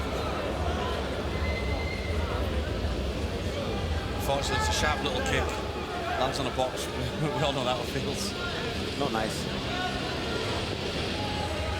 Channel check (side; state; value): both; identical; correlation 1.00